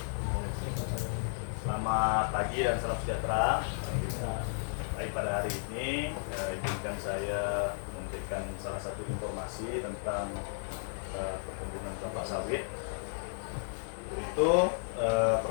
Selamat pagi dan salam sejahtera. Baik, pada hari ini izinkan saya memberikan salah satu informasi tentang perkebunan kelapa sawit. Itu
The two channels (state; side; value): silent; right; digital silence